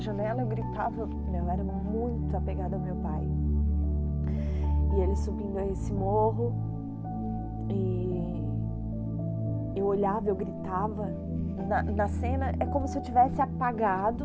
eu gritava. Eu era muito apegada ao meu pai. E ele subindo esse morro e eu olhava, eu gritava. Na cena é como se eu tivesse apagado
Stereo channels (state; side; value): identical; both; correlation 1.00